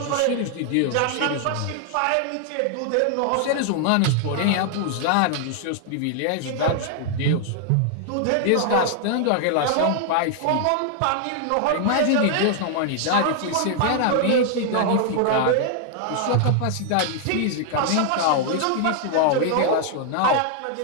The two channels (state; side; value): different; both; correlation 0.00